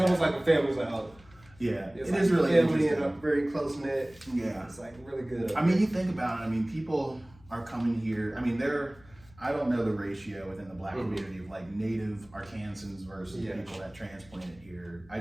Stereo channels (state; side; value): noise; left; hum, 25 dB below the sound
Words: like a family. It's like it like is really family interesting. and a very close knit. Yeah, it's like really good. I mean, you think about it. People are coming here. I don't know the ratio within the Black community of like native Arkansans versus people that transplanted here.